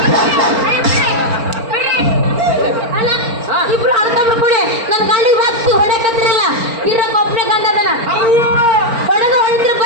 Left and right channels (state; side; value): late; left; 4.4 ms